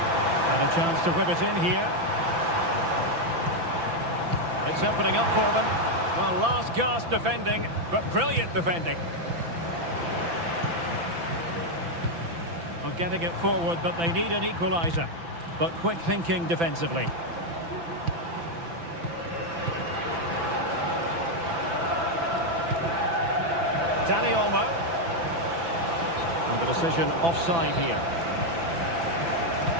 And a chance to whip it in here. It's opening up for them. Well, last gasp defending, but brilliant defending. Well, getting it forward, but they need an equaliser. But quick thinking defensively. Dani Olmo. And the decision offside here.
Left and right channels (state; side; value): late; left; 5.9 ms